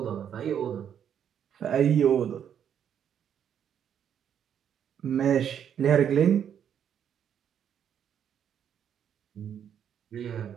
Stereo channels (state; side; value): quieter; left; 8.9 dB